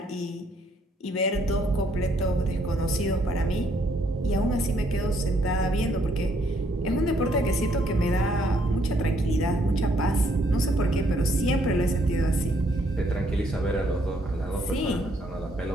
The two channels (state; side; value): normal; both; correlation 0.69